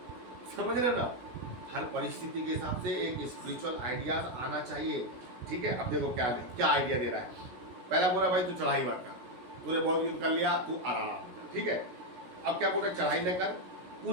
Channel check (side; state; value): left; late; 17 ms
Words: समझ रहे ना? हर परिस्थिति के हिसाब से एक स्पिरिचुअल आइडिया आना चाहिए, ठीक है? अब देखो क्या आइडिया दे रहा है। पहला बोला भाई तू चढ़ाई मत कर, तूने बहुत युद्ध कर लिया, तू आराम कर, ठीक है? अब क्या बोल रहा है, चढ़ाई न कर,